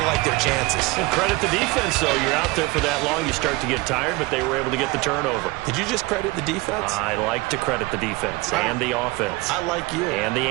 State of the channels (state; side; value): quieter; left; 22.9 dB